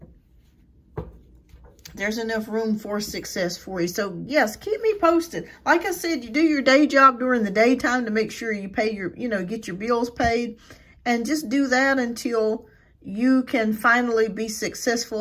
There's enough room for success for you. So, yes, keep me posted. Like I said, you do your day job during the daytime to make sure you pay your, get your bills paid. And just do that until you can finally be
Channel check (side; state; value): both; identical; correlation 1.00